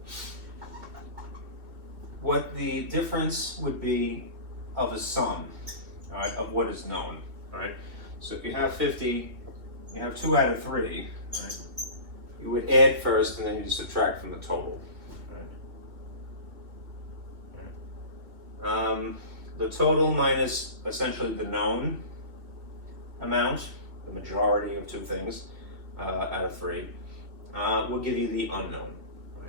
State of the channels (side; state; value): left; late; 2.1 ms